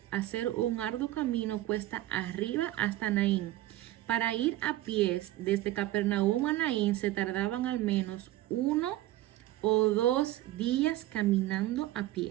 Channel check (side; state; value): left; quieter; 15.5 dB